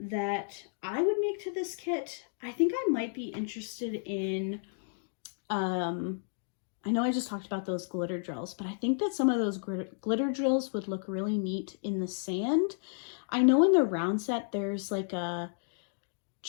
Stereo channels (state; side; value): silent; right; digital silence